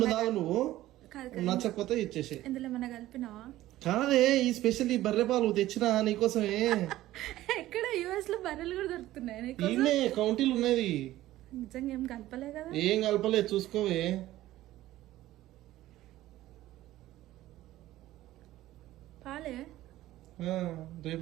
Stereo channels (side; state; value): left; quieter; 15.3 dB